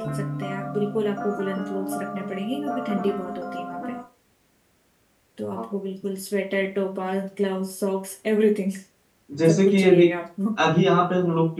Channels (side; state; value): both; identical; correlation 1.00